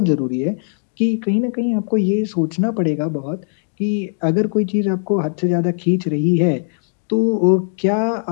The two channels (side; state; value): right; silent; digital silence